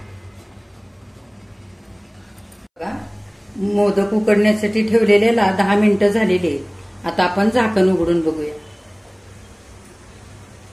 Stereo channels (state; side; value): identical; both; correlation 1.00